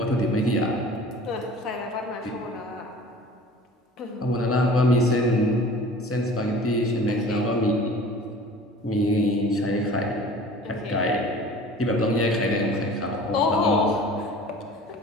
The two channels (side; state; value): both; normal; correlation 0.43